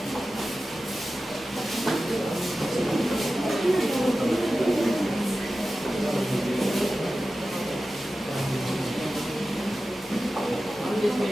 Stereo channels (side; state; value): both; normal; correlation 0.94